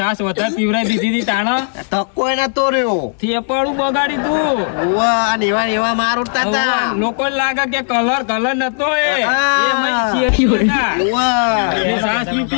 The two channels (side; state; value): right; silent; 64 dB below the other